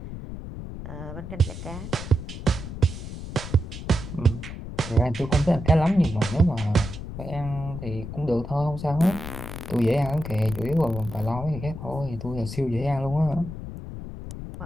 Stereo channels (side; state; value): left; noise; rumble, 9 dB below the sound